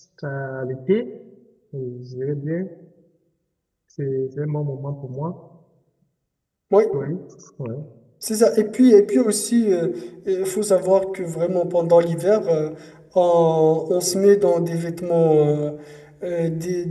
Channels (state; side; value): identical; both; correlation 1.00